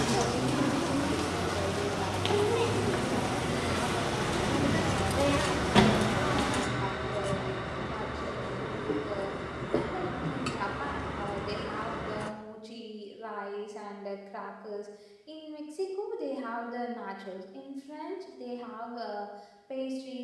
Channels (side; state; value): both; identical; correlation 1.00